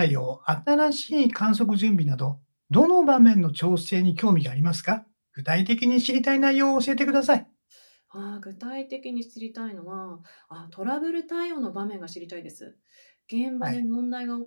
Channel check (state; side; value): inverted; both; correlation -1.00